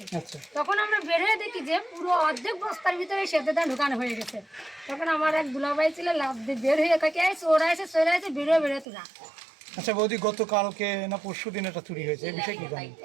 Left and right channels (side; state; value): left; drops out; at 8.8 s